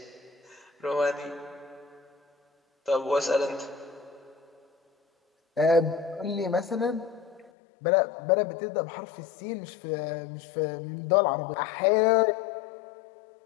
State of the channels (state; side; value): drops out; right; at 7.5 s